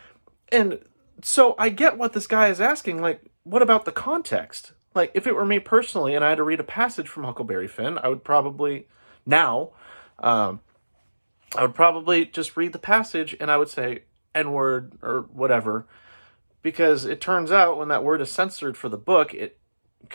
And so I get what this guy is asking, like, what about the context? Like, if it were me personally and I had to read a passage from Huckleberry Finn, I would probably, now, I would probably just read the passage and I would say N-word or whatever, because it turns out when that word is censored for the book, it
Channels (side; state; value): both; inverted; correlation -1.00